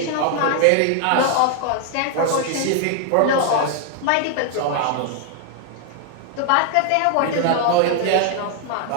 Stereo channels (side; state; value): both; different; correlation 0.00